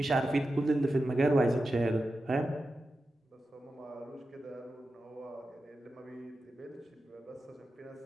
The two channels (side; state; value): both; normal; correlation 0.91